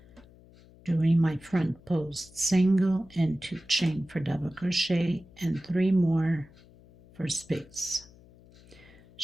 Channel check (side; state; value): left; noise; hum, 25 dB below the sound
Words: doing my front post single and 2 chain for double crochet and 3 more for space.